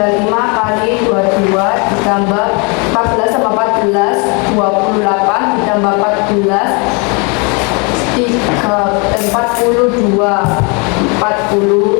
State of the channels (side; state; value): right; quieter; 32.2 dB